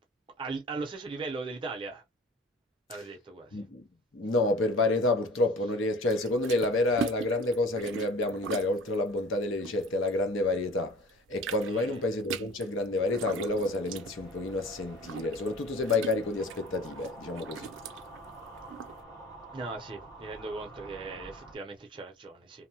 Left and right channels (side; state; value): both; normal; correlation 0.44